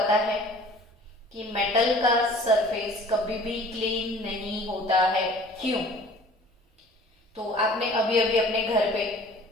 है कि मेटल का सरफेस कभी भी क्लीन नहीं होता है। क्यों? तो आपने अभी अभी अपने घर पे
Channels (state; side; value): normal; both; correlation 0.48